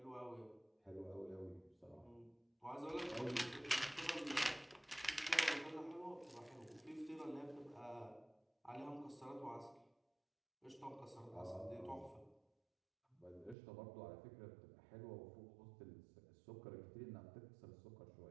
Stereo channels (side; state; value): left; drops out; at 13.6 s